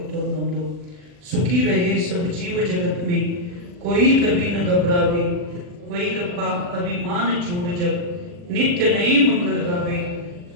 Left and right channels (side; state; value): left; late; 40 ms